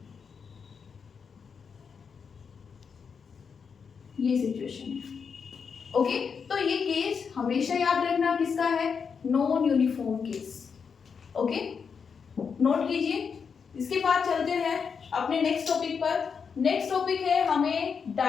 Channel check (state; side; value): quieter; right; 6.1 dB